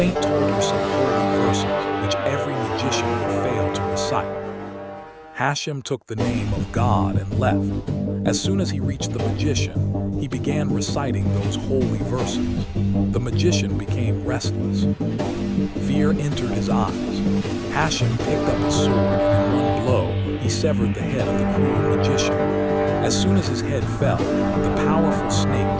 told her some holy verses, which every magician would fail to recite. Hashem took the name of God and left. As soon as he reached the magician, he began reciting those holy verses. The magician became restless. Fear entered his eyes. Hashem picked up his sword, and in one blow, he severed the head of the cruel magician. As soon as his head fell, the powerful snake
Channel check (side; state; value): both; identical; correlation 1.00